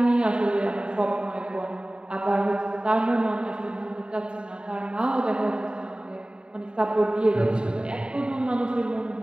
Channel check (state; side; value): late; left; 0.050 ms